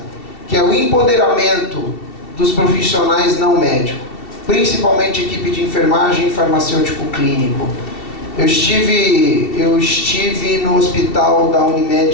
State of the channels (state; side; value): late; right; 2.7 ms